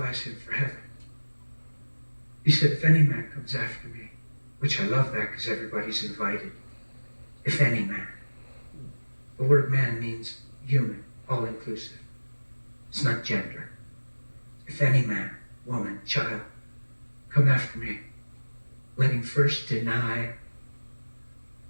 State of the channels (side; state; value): both; inverted; correlation -1.00